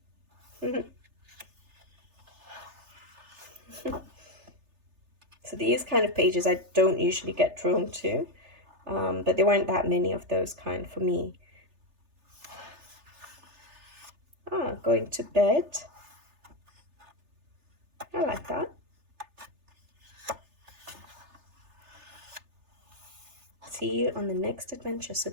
So these kind of pages I don't usually get drawn to, but there weren't that many of those kind for me. Going to bed. I like that. See you on the next adventure. So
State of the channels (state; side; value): late; left; 3.3 ms